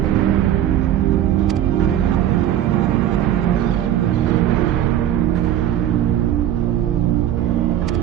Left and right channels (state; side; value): quieter; left; 11.5 dB